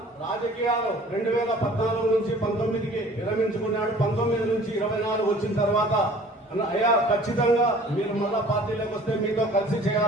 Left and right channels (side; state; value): both; normal; correlation 0.49